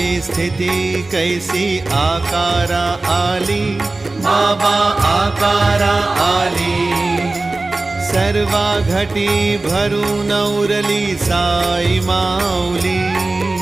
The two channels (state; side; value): quieter; left; 3.2 dB